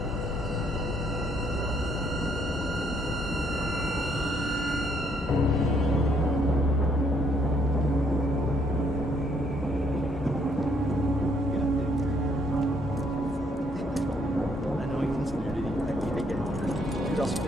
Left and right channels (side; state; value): both; normal; correlation 0.68